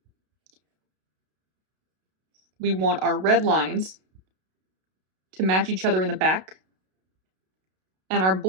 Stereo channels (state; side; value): late; left; 32 ms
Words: we want our red lines to match each other in the back, and our